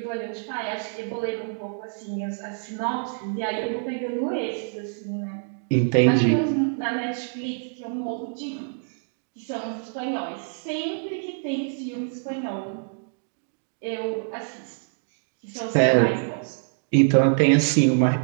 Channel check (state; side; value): silent; left; digital silence